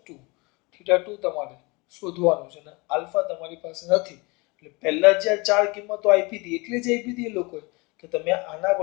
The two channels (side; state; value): right; quieter; 26.6 dB